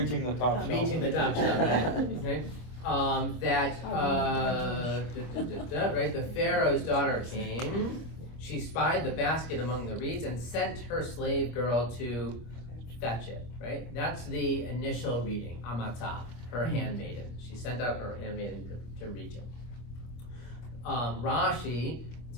the top shelf. Reaching the top shelf, right? Okay. Right? The Pharaoh's daughter came. She spied the basket among the reeds and sent her slave girl to fetch it. Right? That's the initial reading. Amata, her handmaiden. She sent out her handmaiden to reach it. Rashi, in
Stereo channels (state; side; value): late; right; 25 ms